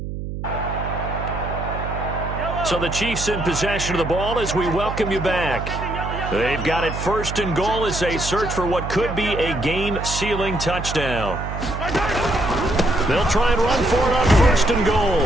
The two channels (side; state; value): right; noise; hum, 6 dB below the sound